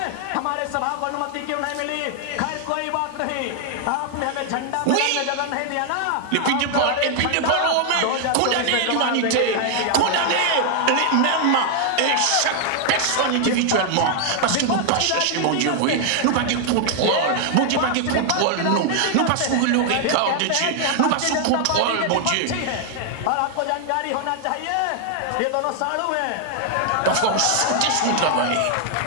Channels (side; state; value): both; different; correlation 0.00